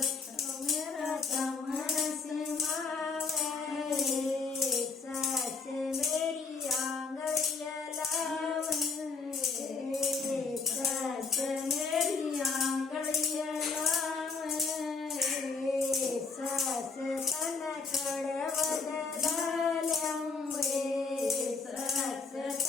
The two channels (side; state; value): right; quieter; 4.6 dB